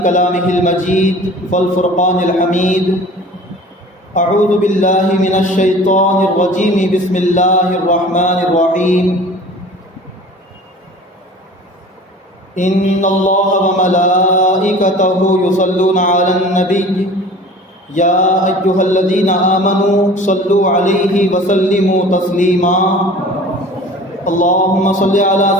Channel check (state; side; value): normal; both; correlation 0.43